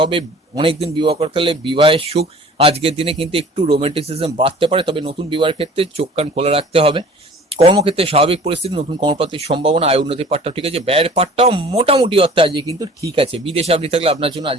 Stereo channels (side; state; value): both; normal; correlation 0.47